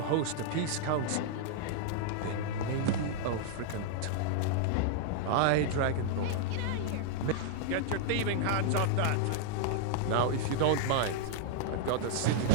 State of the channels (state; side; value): different; both; correlation -0.01